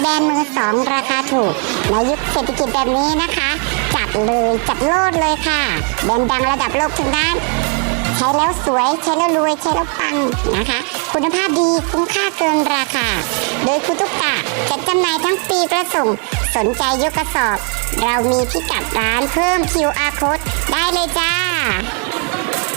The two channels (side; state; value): left; quieter; 39.3 dB